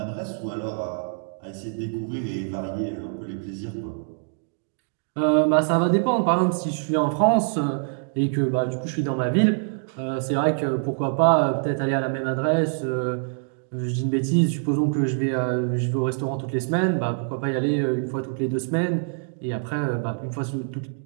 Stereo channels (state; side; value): silent; left; digital silence